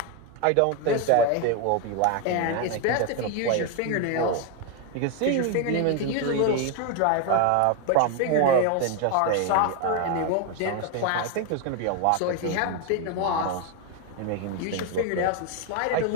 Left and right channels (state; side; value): different; both; correlation 0.01